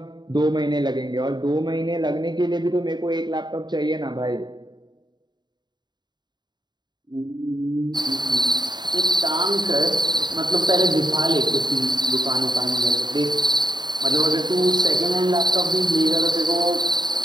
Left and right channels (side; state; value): left; late; 0.21 ms